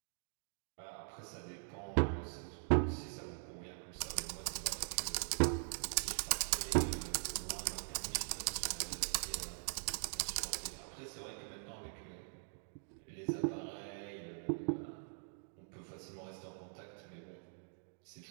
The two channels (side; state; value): left; silent; digital silence